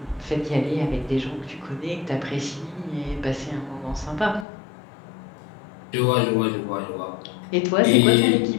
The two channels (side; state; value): right; drops out; at 4.5 s